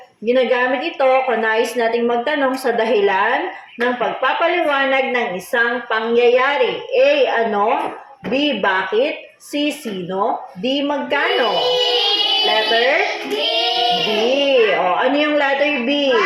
Ginagamit ito kung nais nating magtanong sa dahilan ng pagpapaliwanag ng isang pangyayari. A. Ano? B. Bakit? C. Sino? D. Magkano? Letter? B. Ano yung letter B?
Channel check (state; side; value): identical; both; correlation 1.00